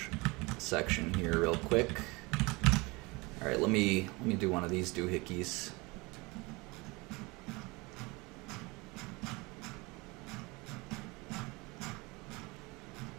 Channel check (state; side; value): quieter; left; 25.1 dB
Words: section here real quick. All right, let me do one of these doohickeys.